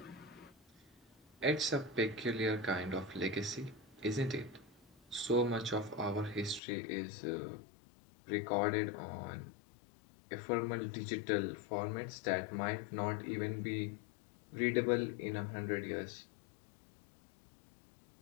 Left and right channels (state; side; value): drops out; right; at 6.6 s